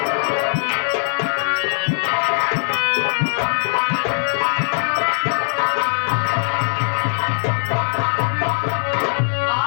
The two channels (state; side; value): silent; right; digital silence